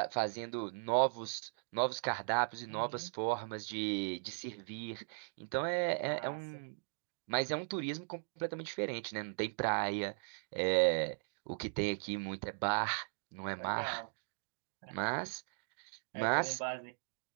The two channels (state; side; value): silent; left; digital silence